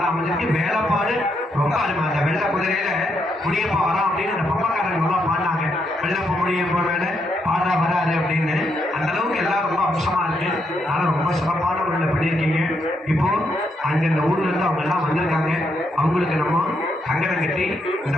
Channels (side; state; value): both; normal; correlation 0.78